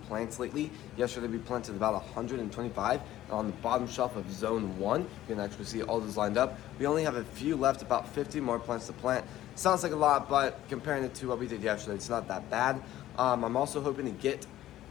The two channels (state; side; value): quieter; right; 13.9 dB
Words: plants lately. Yesterday we planted about 125 on the bottom shelf of zone 1. You can actually see all those lined up. We only have a few left, about 50 more plants to plant. Sounds like a lot, but comparing it to what we did yesterday, it's not that bad. I'm also hoping to get